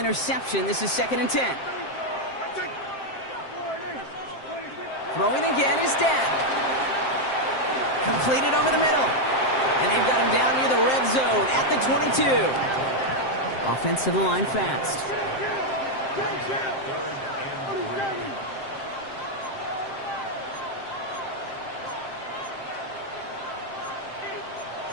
this is 2nd and 10. Throwing again is Dad. Completed over the middle. And they've got him down near the red zone at the 22. Offense to the line fast.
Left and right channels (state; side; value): late; right; 7.6 ms